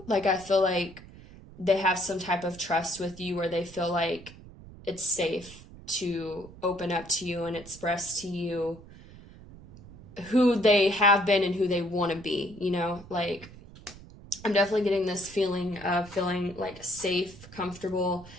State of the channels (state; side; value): noise; right; rumble, 18 dB below the sound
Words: I feel like they have some type of trust with you where they feel like it's safe to open up to you and express to you who they have been and who they want to be, I'm definitely getting this feeling of feeling safe, comfortable.